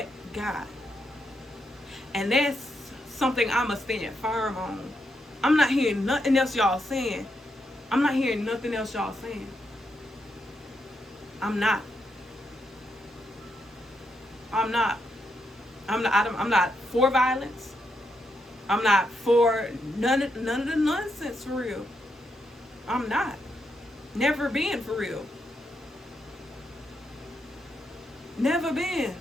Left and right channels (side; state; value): both; normal; correlation 0.81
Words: God. And that's something I'ma stand firm on. I'm not hearing nothing else y'all saying. I'm not for violence. I'm not for none of the nonsense, for real. I'm not. Never been, for real. Never been.